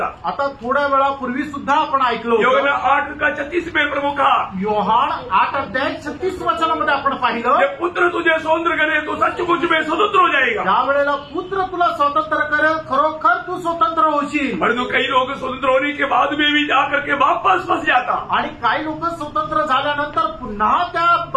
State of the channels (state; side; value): identical; both; correlation 1.00